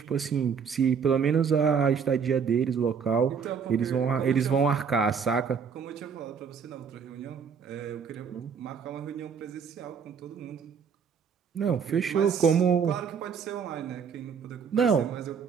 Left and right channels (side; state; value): left; quieter; 6.6 dB